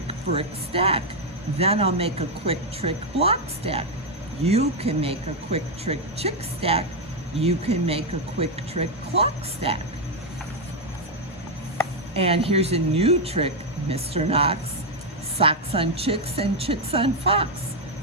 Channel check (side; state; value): both; normal; correlation 0.02